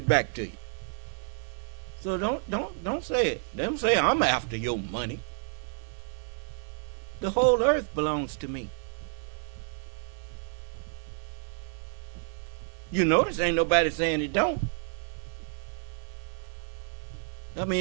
back to you. So don't say it. Don't say I'm after your money. The whole earth belongs to me. You notice ain't nobody saying it don't. I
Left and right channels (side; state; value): left; silent; digital silence